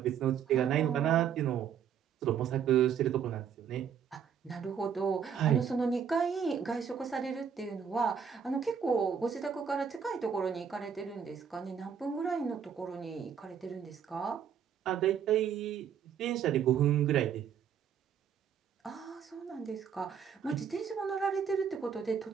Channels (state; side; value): quieter; left; 7.7 dB